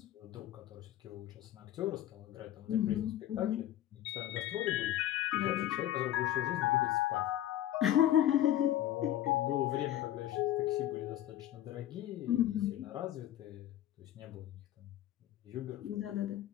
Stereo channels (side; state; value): right; quieter; 12.6 dB